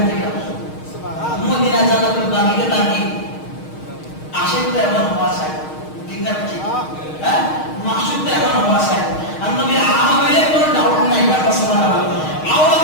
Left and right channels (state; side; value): late; right; 6.4 ms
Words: গেল মদিনা জান্নাতুল বাকিতে তাকি আশিকটা এমন হওয়া চাই, ঠিক না? ঠিক, হ্যাঁ, মাকসুদটা এমন হওয়া চাই। আর নবী আহা হইলে কোনো ডাউট নাই। সুবহানাল্লাহ।